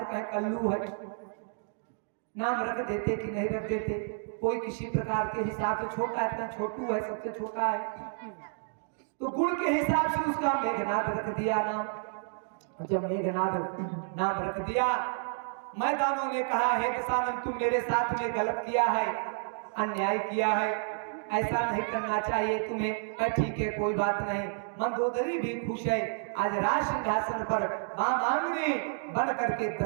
कहे कल्लू है, नाम रख देते कि नहीं रख देते। कोई किसी प्रकार के हिसाब से छोटा है, इतना छोटू है, सबसे छोटा है, तो गुण के हिसाब से उसका मेघनाद रख दिया नाम। जब मेघनाद नाम रख दिया, मैदानों ने कहा हे दशानन तुम मेरे साथ में गलत किया है, अन्याय किया है, ऐसा नहीं करना चाहिए तुम्हें। ठीक है कोई बात नहीं। मंदोदरी भी खुश है, आज राज सिंहासन पर मांगनी बन करके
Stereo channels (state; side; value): silent; left; digital silence